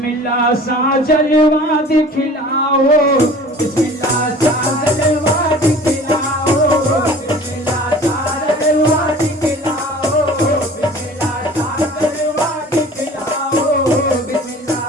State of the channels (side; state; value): both; normal; correlation 0.44